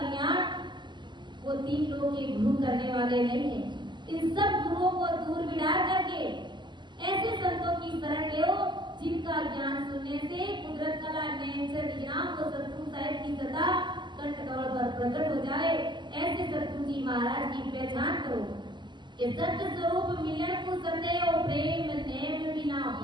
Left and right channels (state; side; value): late; left; 0.22 ms